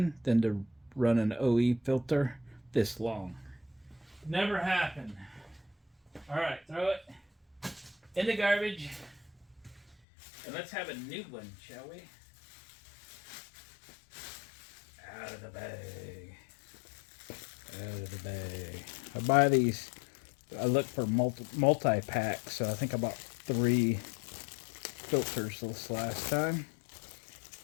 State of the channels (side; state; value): right; drops out; at 10.0 s